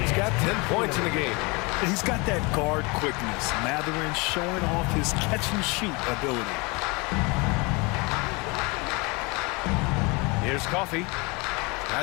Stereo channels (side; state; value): right; quieter; 27.6 dB